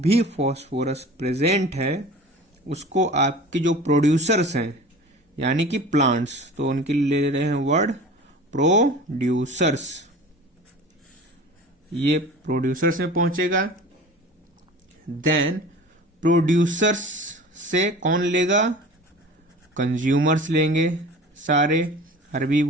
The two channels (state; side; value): normal; both; correlation 0.39